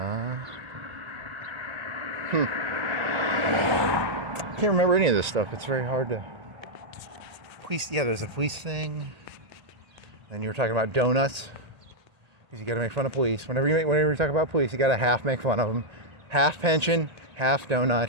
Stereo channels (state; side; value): late; left; 1.8 ms